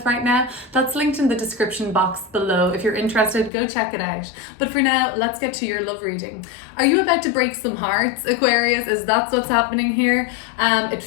right now. That's linked in the description box below. If you're interested, go check it out. But for now, let's get to your love reading. Are you about to break some hearts, Aquarius? Is that what's happening here? It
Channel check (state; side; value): drops out; right; at 3.5 s